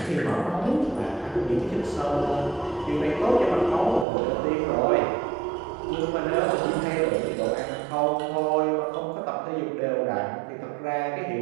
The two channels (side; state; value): left; drops out; at 4.0 s